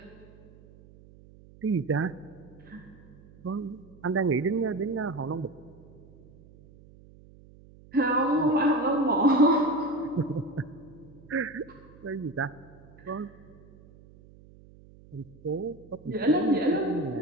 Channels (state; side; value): noise; right; hum, 23 dB below the sound